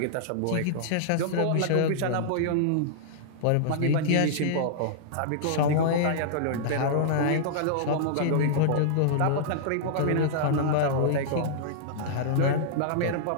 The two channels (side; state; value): both; different; correlation -0.02